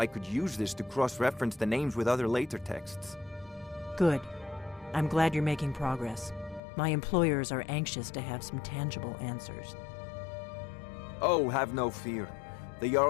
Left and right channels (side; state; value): right; drops out; at 6.6 s